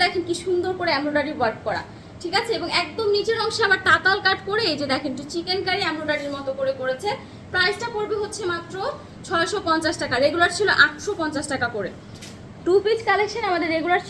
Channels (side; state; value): both; identical; correlation 1.00